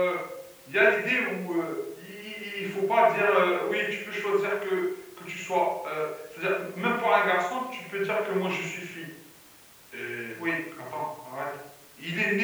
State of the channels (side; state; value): both; identical; correlation 1.00